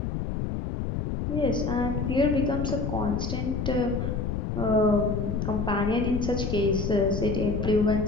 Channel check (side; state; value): left; noise; rumble, 2 dB below the sound